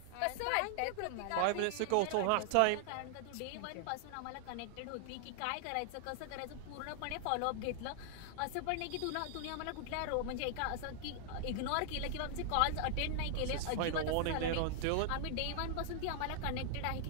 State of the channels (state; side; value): different; both; correlation 0.00